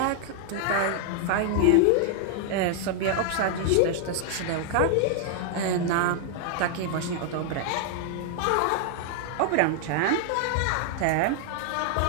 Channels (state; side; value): different; both; correlation 0.00